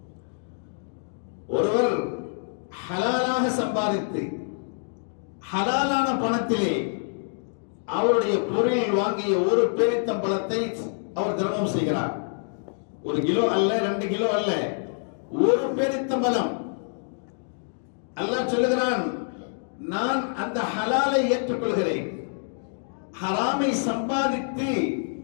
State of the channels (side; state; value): right; silent; digital silence